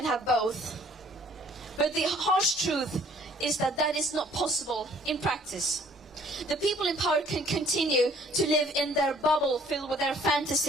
have both. But the harsh truth is that that is not possible in practice. The people in power can continue to live in their bubble filled with their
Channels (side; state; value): both; normal; correlation 0.59